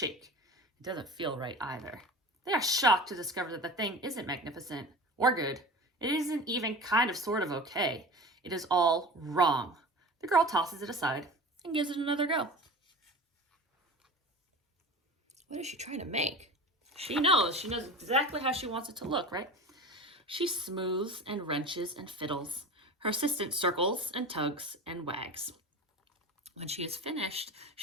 It doesn't feel right either. They are shocked to discover that the thing isn't magnificent or good. It isn't even kind of sort of okay. It is all wrong. The girl tosses it aside and gives it another go. What is she trying to make? She knows exactly how she wants it to look, right? She smooths and wrenches and fiddles. Her assistant circles and tugs and wags. When she is finished,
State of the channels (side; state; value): both; normal; correlation 0.34